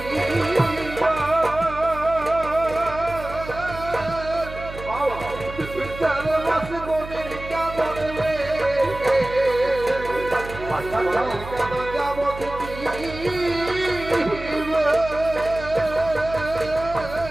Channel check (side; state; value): right; noise; hum, 12 dB below the sound